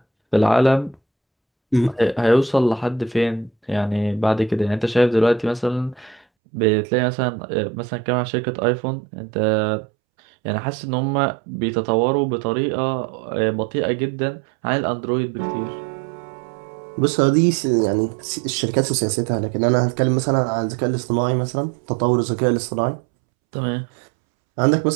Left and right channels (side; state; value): left; drops out; at 6.2 s